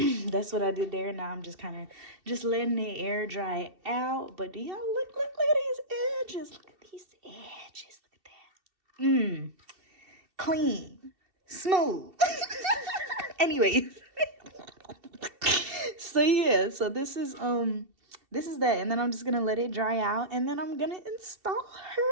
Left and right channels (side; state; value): left; late; 2.7 ms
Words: that's what I did there. Now I'm just kind of just letting the air dry out. But do y'all look at these edges? Look at these edges. Look at that. Clean. Smooth. Anyways. So yeah, so this is that, and then I'm just gonna let it dry out, and then I'm gonna install her.